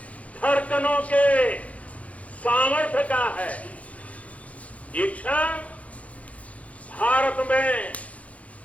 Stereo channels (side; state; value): right; late; 0.066 ms